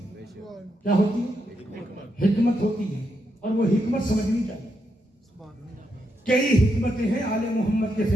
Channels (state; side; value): normal; both; correlation 0.81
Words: کیا ہوتی ہے؟ حکمت ہوتی ہے، اور وہ حکمت سمجھنی چاہیے۔ کئی حکمتیں ہیں آل محمد کے